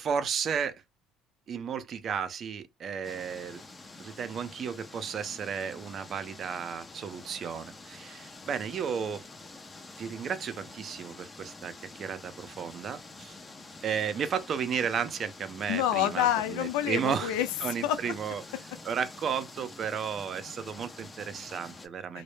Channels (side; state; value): both; normal; correlation 0.48